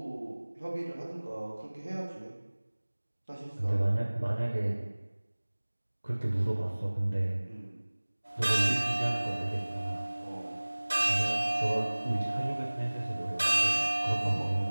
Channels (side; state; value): both; inverted; correlation -1.00